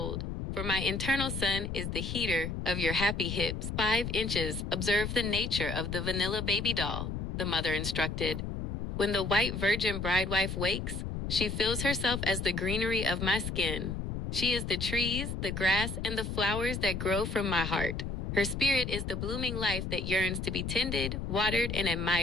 for my internal sun is the heater of your happy hips. 5 inches, observe the nature of the vanilla baby doll, the mother instructed. When the white virgin bridewife wakes, she feels herself as the greenery of my skin. She is the trees, the grass, and the flowers that grow from my heart. Her spirit is the blooming life that yearns to be tended, watered, and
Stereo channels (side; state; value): left; noise; rumble, 4 dB below the sound